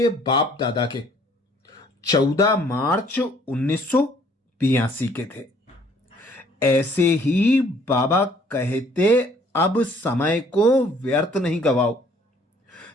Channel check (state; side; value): normal; both; correlation 0.60